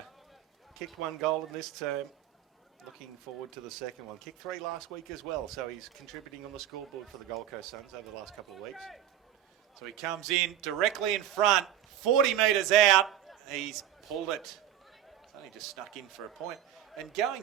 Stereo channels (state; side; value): quieter; left; 10.9 dB